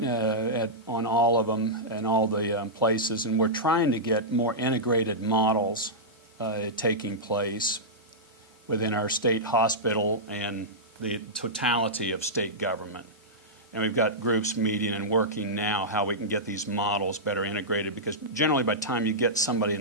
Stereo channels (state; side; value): normal; both; correlation -0.12